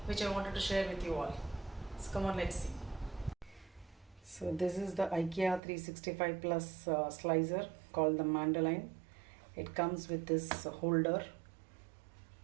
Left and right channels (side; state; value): left; drops out; at 5.6 s